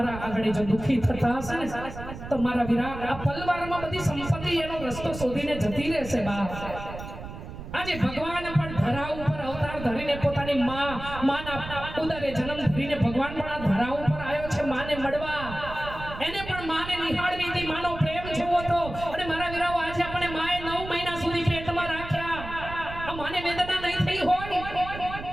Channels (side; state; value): right; noise; rumble, 11 dB below the sound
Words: આગળ જો દુઃખી થતા હશે ને, તો મારા વીરા આ પલવારમાં બધી સંપત્તિ એનો રસ્તો શોધીને જતી રહેશે બાપ. આજે ભગવાન પણ ધરા ઉપર અવતાર ધરીને પોતાની માના ઉદરે જન્મ ધરીને ભગવાન પણ આ ધરા ઉપર આવ્યો છે માને મળવા. એને પણ માને નિહાળવી હતી, માનો પ્રેમ જોવો તો. અને મારા વીરાઓ, આજે આપણે માએ 9 મહિના સુધી પેટમાં રાખ્યા. આ માને વેદના નહીં થઈ હોય?